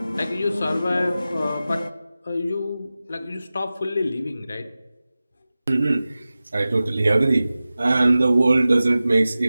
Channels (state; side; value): inverted; both; correlation -0.96